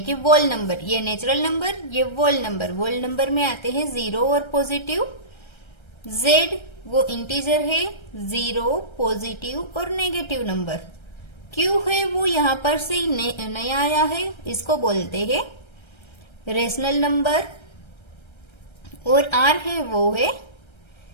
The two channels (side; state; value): right; late; 1.3 ms